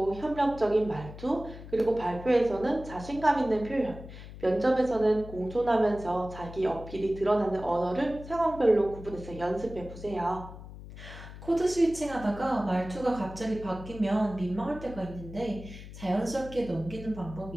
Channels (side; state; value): left; noise; hum, 14 dB below the sound